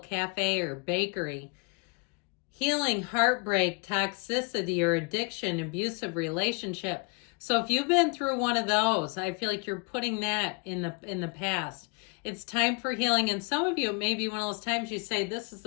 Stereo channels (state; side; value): quieter; right; 31.5 dB